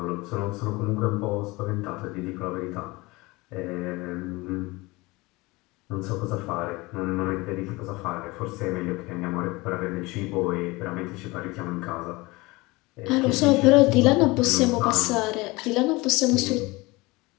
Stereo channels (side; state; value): right; quieter; 22.8 dB